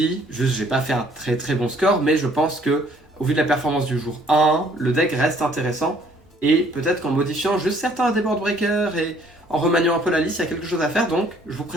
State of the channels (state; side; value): normal; both; correlation 0.61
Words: Juste, j'ai pas fait un très très bon score, mais je pense que, au vu de la performance du jour 1, le deck reste intéressant. Et peut-être qu'en modifiant juste certains des board breakers et en remaniant un peu la liste, il y a quelque chose à faire. Donc, je vous